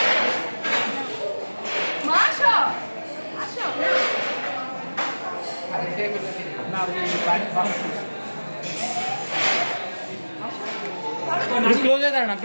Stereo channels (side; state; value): both; inverted; correlation -1.00